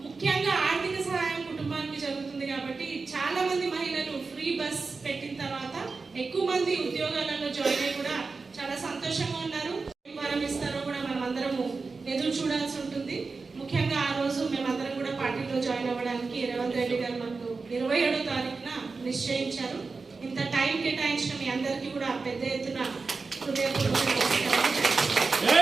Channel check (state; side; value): quieter; left; 4.3 dB